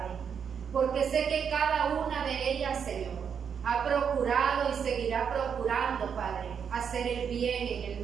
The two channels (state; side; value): quieter; left; 7.2 dB